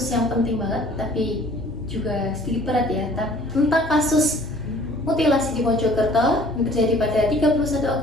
yang penting banget, tapi juga sedikit berat ya, tentang kasus mutilasi di Mojokerto yang terjadi pada 31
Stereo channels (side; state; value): both; normal; correlation 0.53